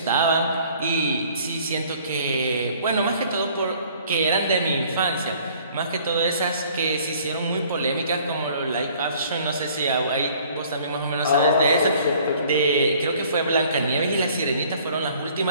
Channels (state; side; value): inverted; both; correlation -0.56